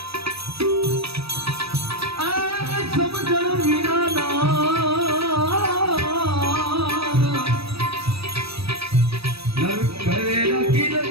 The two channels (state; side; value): late; left; 0.77 ms